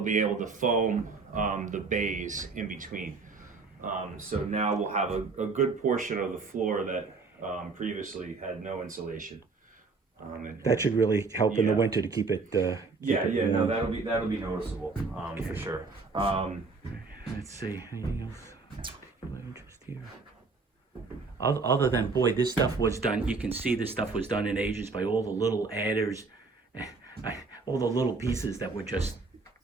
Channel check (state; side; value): quieter; left; 4.2 dB